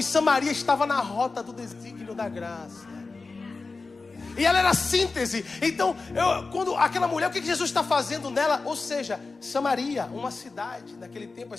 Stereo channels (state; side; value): quieter; right; 4.0 dB